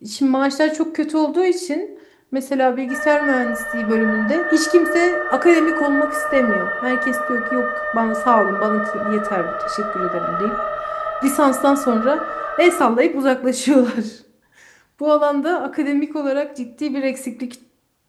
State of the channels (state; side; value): identical; both; correlation 1.00